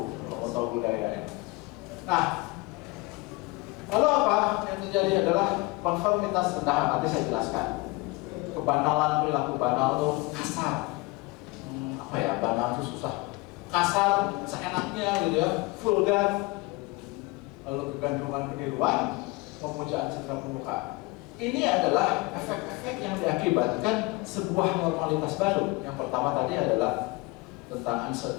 kalau tahu budaya. Nah, lalu apa yang terjadi adalah konformitas rendahan. Nanti saya jelaskan. Kebanalan, perilaku banal tuh kasar. Apa ya, banal itu susah. Kasar, seenaknya gitu ya, vulgar. Lalu kegantungan keniruan, pemujaan citra permukaan. Ini adalah efek-efek yang diakibatkan sebuah normalitas baru. Yang pertama tadi adalah tentang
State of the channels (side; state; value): right; quieter; 24.2 dB